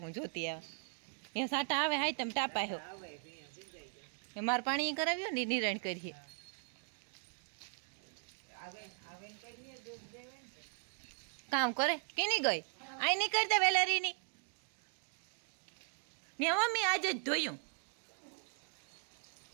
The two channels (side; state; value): left; silent; 52 dB below the other